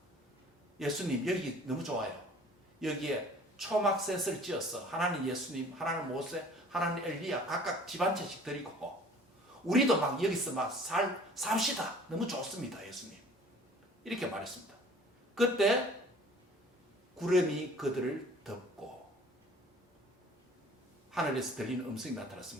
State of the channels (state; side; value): normal; both; correlation 0.50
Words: 예수님 여기 너무 좋아요. 여기에 초막셋을 지어서 하나님 예수님, 하나님 모세, 하나님 엘리야 각각 집 한 채씩 드리고 우리도 막 여기서 막 삽시다. 너무 좋습니다. 예수님. 이렇게 말했습니다. 그때 구름이 그들을 덮고 하늘에서 들리는 음성이